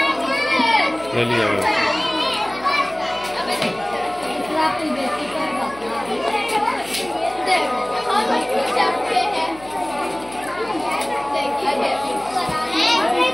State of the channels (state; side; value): noise; left; hum, 22 dB below the sound